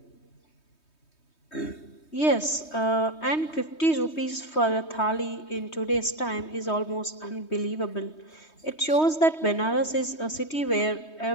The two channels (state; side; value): late; right; 3.2 ms